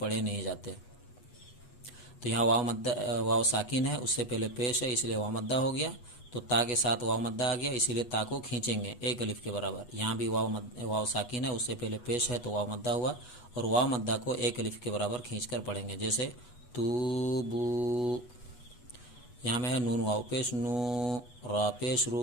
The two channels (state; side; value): late; right; 8.2 ms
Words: نہیں جاتے. تو یہاں واو ساکن ہے، اس سے پہلے پیش ہے، اس لیے واو مدہ ہو گیا. تو تا کے ساتھ واو مدہ آ گیا، اسی لیے تا کو کھینچیں گے ایک الف کے برابر. یہاں بھی واو ساکن ہے، اس سے پہلے پیش ہے تو واو مدہ ہوا، اور واو مدہ کو ایک الف کے برابر کھینچ کر پڑھیں گے. جیسے توبو، یہاں میں ہے نون واو پیش نو، را پیش